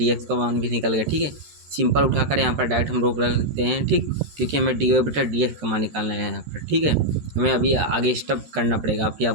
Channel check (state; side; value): late; left; 13 ms